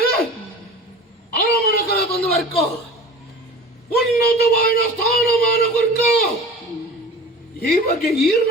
ಅರಮನ ಕಲ ತಂದು ವರ್ಕ ಉನ್ನತವಾದ ಸ್ಥಾನಮಾನ ವರ್ಕ ಈ ಬಗ್ಗೆ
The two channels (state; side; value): normal; both; correlation 0.38